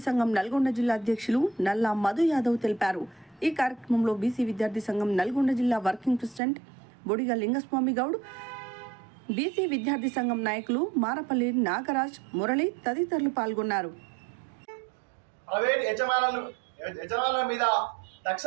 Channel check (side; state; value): left; drops out; at 6.4 s